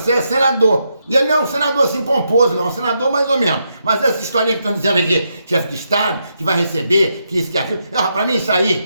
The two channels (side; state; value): both; inverted; correlation -0.81